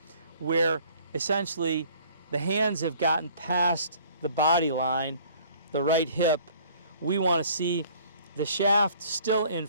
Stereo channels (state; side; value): inverted; both; correlation -0.54